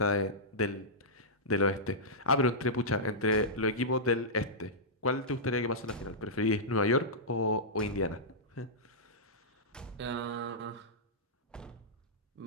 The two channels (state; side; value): normal; both; correlation -0.13